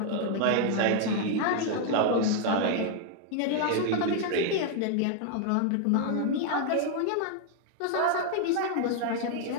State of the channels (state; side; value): different; both; correlation 0.00